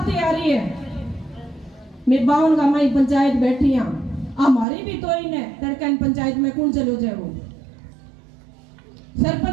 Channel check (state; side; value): drops out; left; at 4.7 s